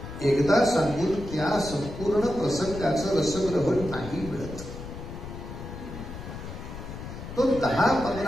एकदा सांगून त्या संपूर्ण प्रसंगाचं रसग्रहण नाही मिळत. तो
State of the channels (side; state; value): left; noise; rumble, 10 dB below the sound